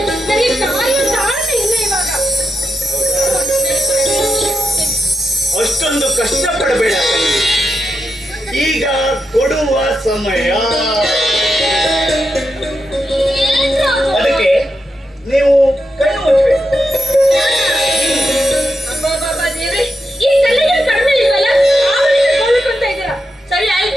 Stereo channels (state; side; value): normal; both; correlation 0.86